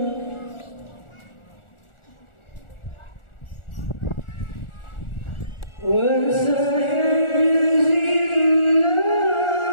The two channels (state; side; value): late; right; 1.4 ms